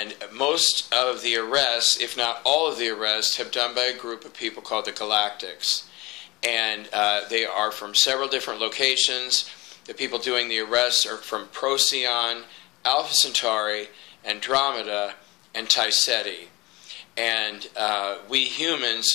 most of the arrests, if not all of the arrests, have done by a group of people called the Galactics. And they are from several different locations. The people doing the arrests are from Procyon, Alpha Centauri, Andromeda, and Taiseti. And we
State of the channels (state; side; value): quieter; right; 22.1 dB